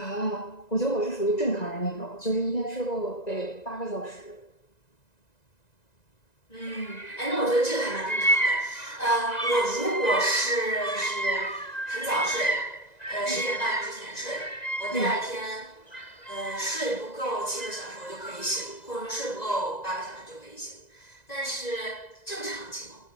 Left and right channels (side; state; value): right; late; 1.9 ms